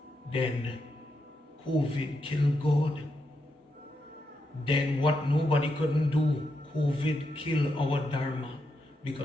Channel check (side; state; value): both; normal; correlation 0.83